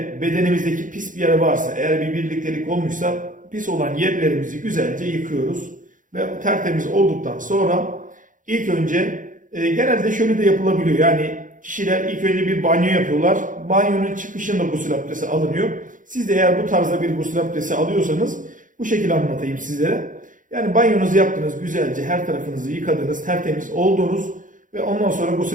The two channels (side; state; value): left; late; 0.38 ms